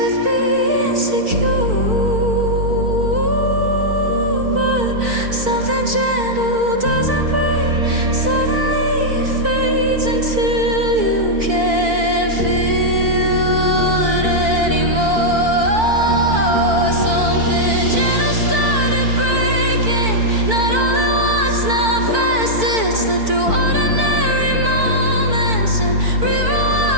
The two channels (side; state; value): left; late; 4.5 ms